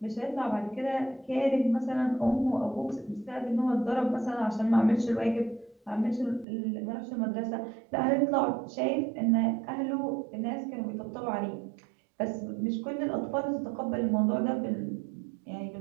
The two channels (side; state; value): left; drops out; at 6.5 s